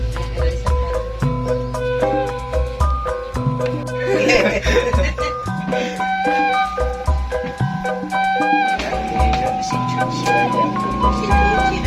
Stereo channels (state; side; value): identical; both; correlation 1.00